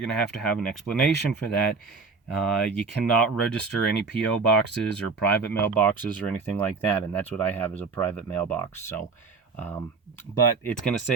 going to have an explanation for that. You cannot register any P.O. boxes or private mailboxes or anything like that, and that's what I have, is a private mailbox. So, but it's going to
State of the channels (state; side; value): quieter; left; 4.6 dB